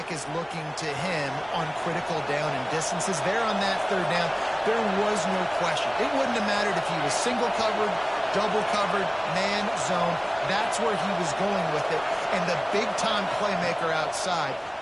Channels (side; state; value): both; identical; correlation 1.00